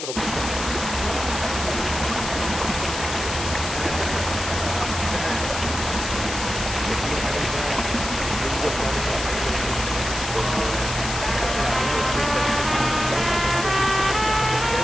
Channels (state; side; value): noise; left; hiss, 6 dB below the sound